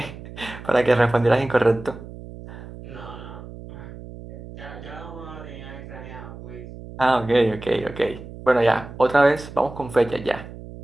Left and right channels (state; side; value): noise; right; hum, 14 dB below the sound